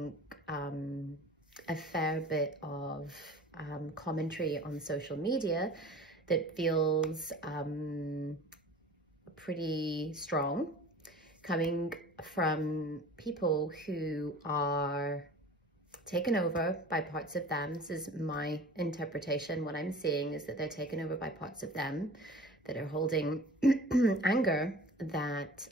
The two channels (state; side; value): normal; both; correlation 0.42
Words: a fair bit of commentary on social media that feels pretty strong, coming from people who are taken over by parts of them. This is my interpretation. What I'm seeing is that they're taken over by parts of them that are holding anger that